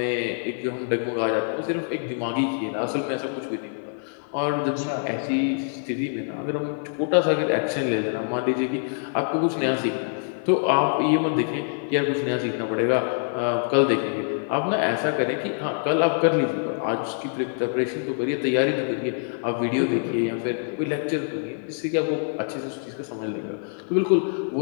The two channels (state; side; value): silent; right; 62 dB below the other